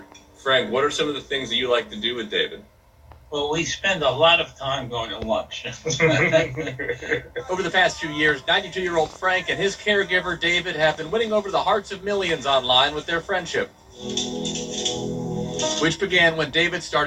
Frank, what are some of the things that you like to do with David? Well, we spend a lot of time going to lunch. Over the past 2 years, 92-year-old Frank and his caregiver, David, have been winning over the hearts of millions online with their friendship, which began when David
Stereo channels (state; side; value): identical; both; correlation 1.00